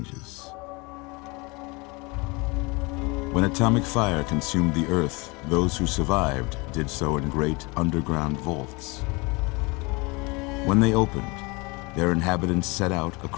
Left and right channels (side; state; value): right; quieter; 27.1 dB